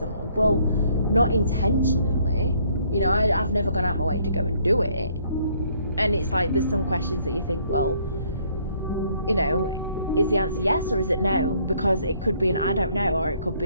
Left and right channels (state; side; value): inverted; both; correlation -0.65